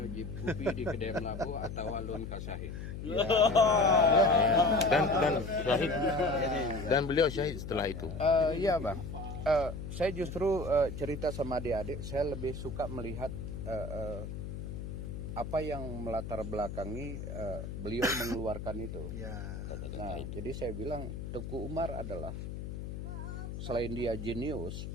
jip kopi di kedai Melabu atau alun kasahid. Dan syahid, dan beliau syahid setelah itu. Iya Bang. Saya justru cerita sama adik-adik, saya lebih suka melihat apa yang melatar belakangi beliau mengeluarkan itu. Ya. Nah, jadi saya bilang Tengku Umar adalah, selain dia jenius,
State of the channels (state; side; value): noise; left; hum, 7 dB below the sound